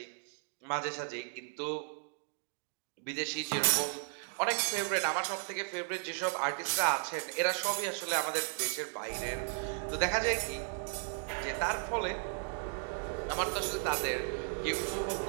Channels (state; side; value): silent; left; 54 dB below the other